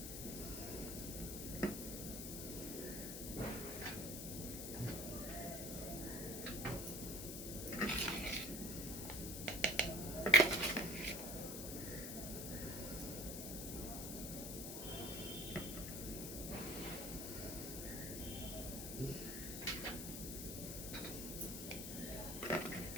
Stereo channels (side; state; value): left; noise; hiss, 5 dB below the sound